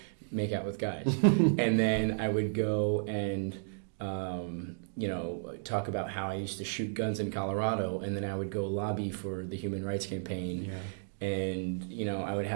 make out with guys, and then I would go and talk about how I used to shoot guns in Colorado, and then I would go lobby for the Human Rights Campaign. And, you know, I would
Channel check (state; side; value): silent; left; digital silence